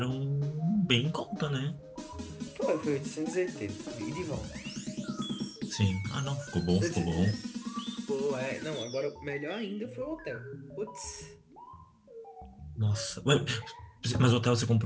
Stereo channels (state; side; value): identical; both; correlation 1.00